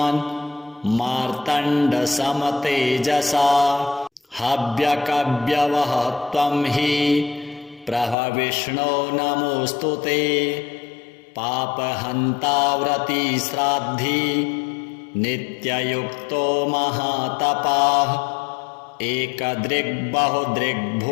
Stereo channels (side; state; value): right; drops out; at 8.2 s